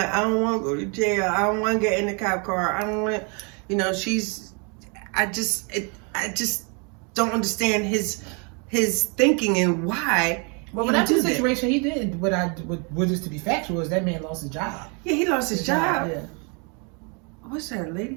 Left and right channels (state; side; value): quieter; left; 35.1 dB